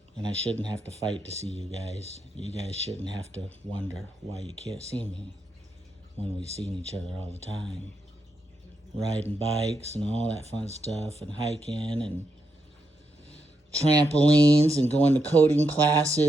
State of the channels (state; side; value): normal; both; correlation 0.83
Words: And I shouldn't have to fight to see you guys. You guys shouldn't have to wonder why you can't see me when we've seen each other all the time. Riding bikes and all that fun stuff, and hiking and trampolines and going to coding